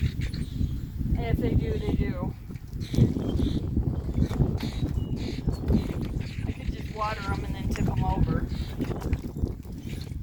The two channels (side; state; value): both; identical; correlation 1.00